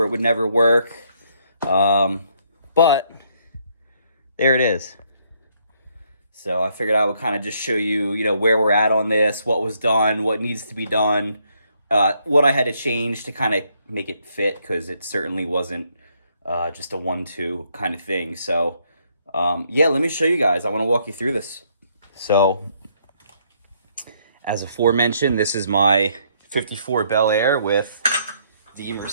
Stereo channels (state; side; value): inverted; both; correlation -0.70